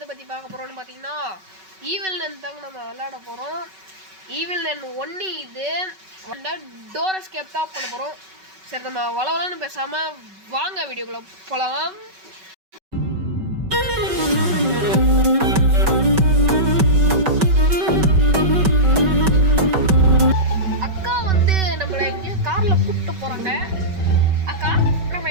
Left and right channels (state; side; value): late; left; 5.3 ms